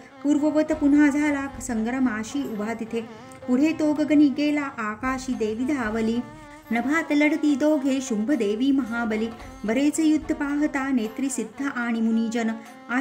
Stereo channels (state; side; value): identical; both; correlation 1.00